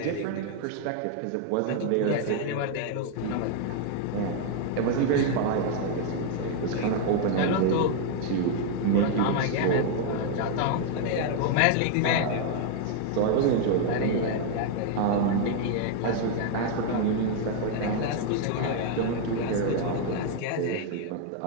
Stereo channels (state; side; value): different; both; correlation 0.00